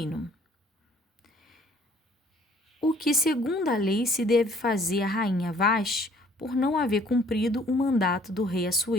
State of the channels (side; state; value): both; normal; correlation 0.59